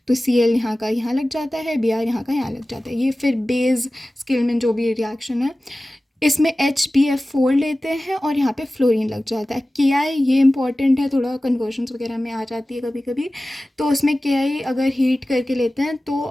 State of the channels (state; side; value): normal; both; correlation 0.96